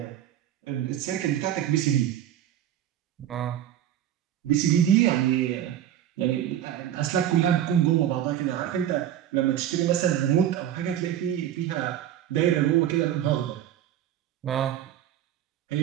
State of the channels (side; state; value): left; quieter; 11.1 dB